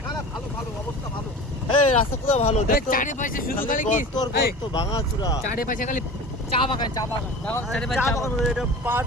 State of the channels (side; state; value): both; normal; correlation 0.36